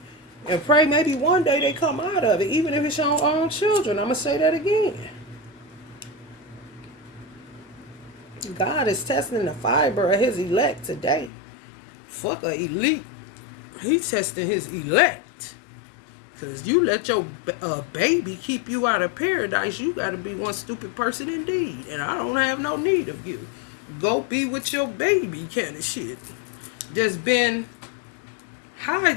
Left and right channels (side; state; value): right; drops out; at 11.3 s